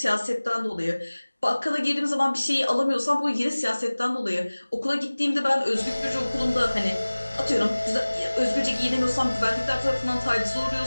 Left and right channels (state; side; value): inverted; both; correlation -1.00